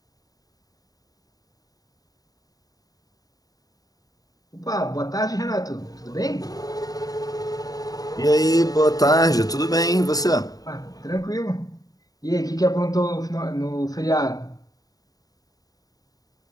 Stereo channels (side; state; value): right; late; 0.18 ms